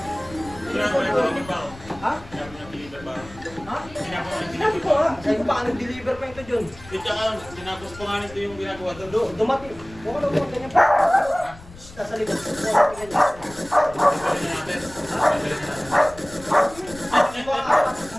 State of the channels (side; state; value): left; noise; rumble, 19 dB below the sound